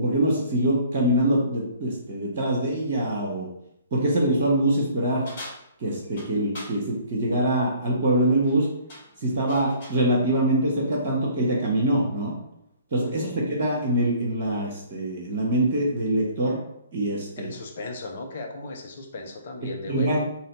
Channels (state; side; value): inverted; both; correlation -0.55